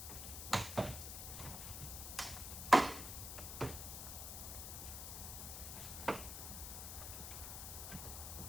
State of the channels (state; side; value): noise; left; hiss, 6 dB below the sound